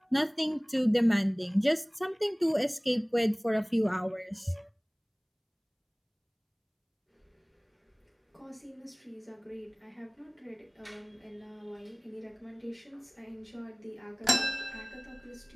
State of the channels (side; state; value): both; identical; correlation 1.00